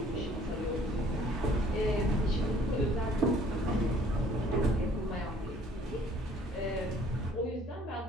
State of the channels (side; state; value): both; normal; correlation 0.57